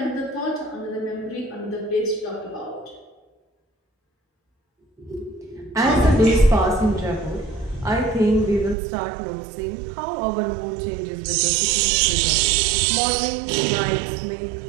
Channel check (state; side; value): drops out; left; at 8.8 s